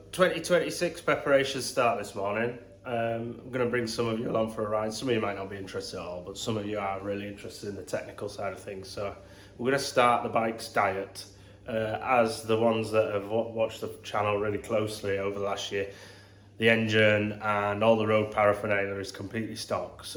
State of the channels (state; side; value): identical; both; correlation 1.00